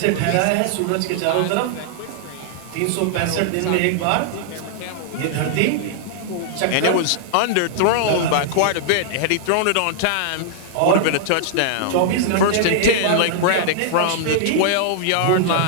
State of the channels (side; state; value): both; different; correlation -0.01